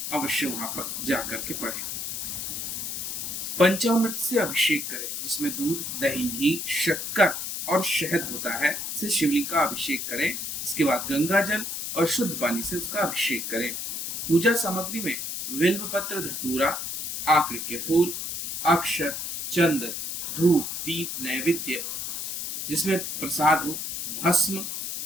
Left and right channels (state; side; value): noise; left; hiss, 4 dB below the sound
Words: अवश्य वहां पर जाकर के पढ़ें। पंचामृत से अभिषेक करें, जिसमें दूध, दही, घी, शक्कर और शहद होता है, से शिवलिंग का अभिषेक करें। इसके बाद गंगा जल और शुद्ध पानी से उसका अभिषेक करें। पूजा सामग्री में बिल्व पत्र, धतूरा, आकड़ के फूल, अक्षर, चंदन, धूप, दीप, नैवेद्य जिसमें प्रसाद हो, भस्म